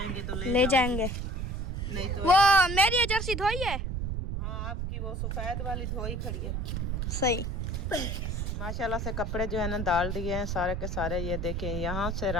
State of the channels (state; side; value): noise; right; rumble, 2 dB below the sound